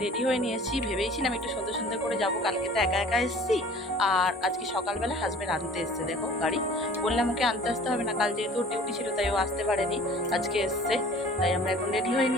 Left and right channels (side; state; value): both; normal; correlation 0.47